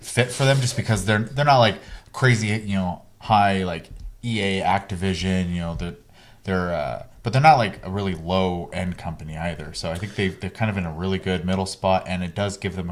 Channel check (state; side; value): identical; both; correlation 1.00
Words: fit for them, just because they're not like crazy, high like EA, Activision, but they're not like a really low end company either. So I think they're kind of in a really good middle spot, and it does give them